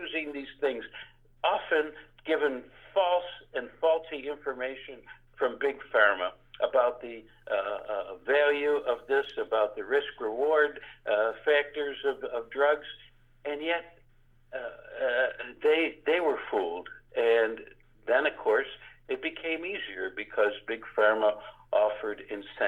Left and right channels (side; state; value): both; identical; correlation 1.00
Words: these things, often given false and faulty information from Big Pharma about the value of this, about the risk-reward factors of drugs, and yet they were fooled. And then, of course, it became easier because Big Pharma offered